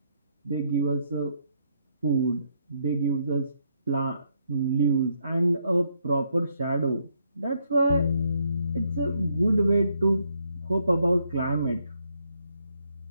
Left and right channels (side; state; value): both; inverted; correlation -0.74